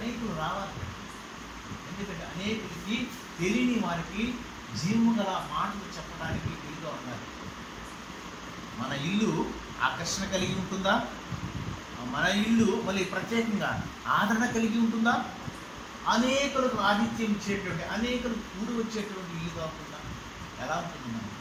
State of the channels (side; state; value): both; identical; correlation 1.00